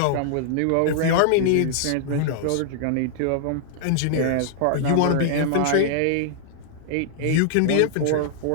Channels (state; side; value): different; both; correlation -0.01